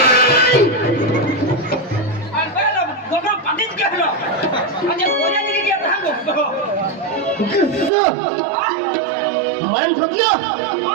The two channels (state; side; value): drops out; left; at 7.9 s